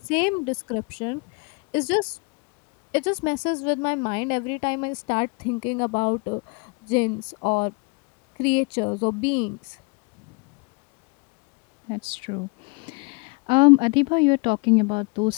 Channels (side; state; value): right; quieter; 31.0 dB